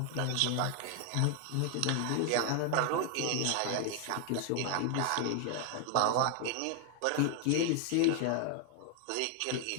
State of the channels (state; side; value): different; both; correlation 0.00